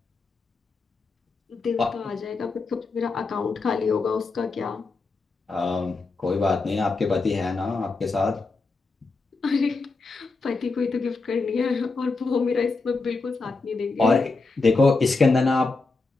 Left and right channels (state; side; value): quieter; right; 3.9 dB